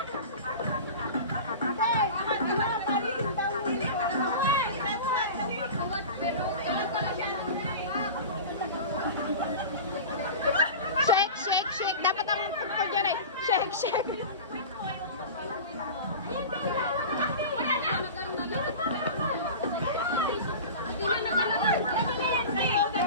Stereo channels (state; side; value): inverted; both; correlation -0.32